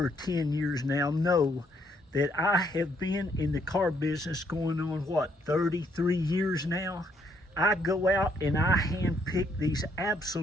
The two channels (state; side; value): normal; both; correlation 0.71